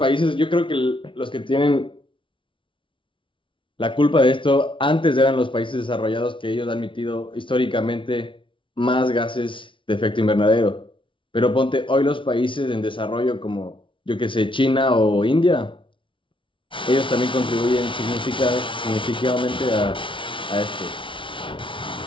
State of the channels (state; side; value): late; right; 0.25 ms